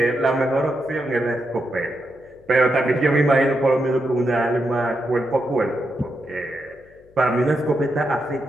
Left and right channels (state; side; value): noise; left; hum, 29 dB below the sound